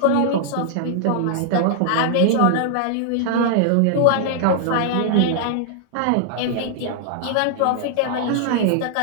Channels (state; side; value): different; both; correlation -0.01